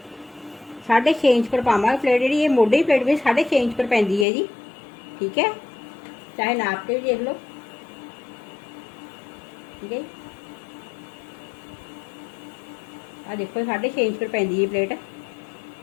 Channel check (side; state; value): right; drops out; at 4.2 s